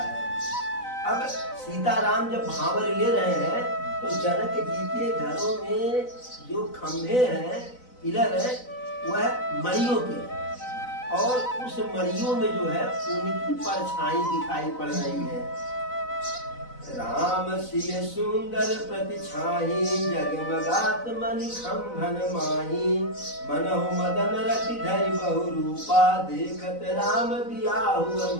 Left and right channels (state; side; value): late; right; 4.0 ms